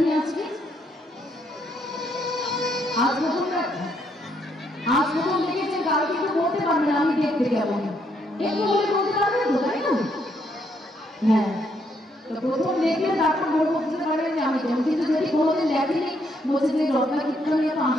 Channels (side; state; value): both; normal; correlation 0.73